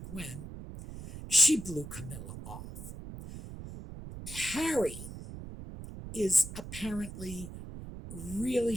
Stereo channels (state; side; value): noise; right; rumble, 11 dB below the sound